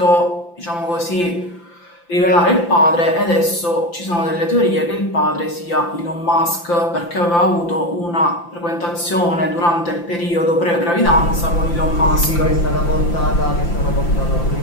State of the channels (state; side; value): late; right; 5.8 ms